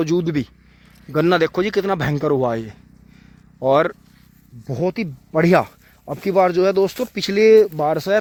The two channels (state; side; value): identical; both; correlation 1.00